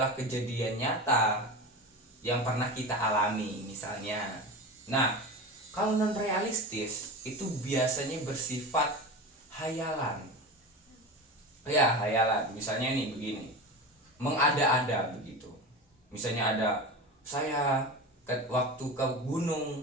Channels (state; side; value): normal; both; correlation 0.27